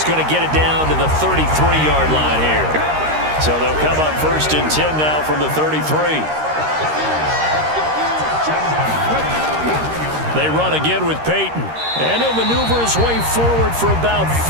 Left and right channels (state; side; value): late; left; 13 ms